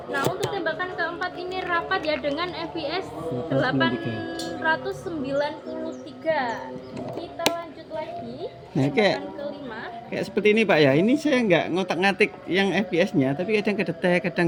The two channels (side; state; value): both; identical; correlation 1.00